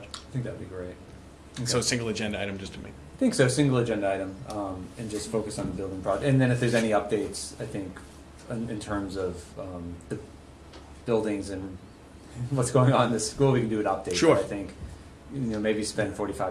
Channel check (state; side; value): identical; both; correlation 1.00